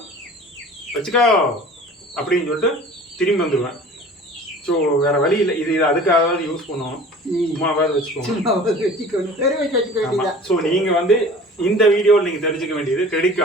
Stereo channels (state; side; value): normal; both; correlation 0.43